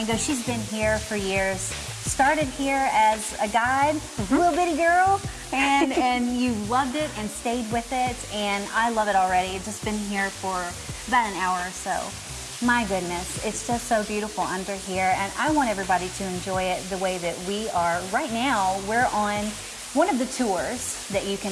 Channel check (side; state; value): both; identical; correlation 1.00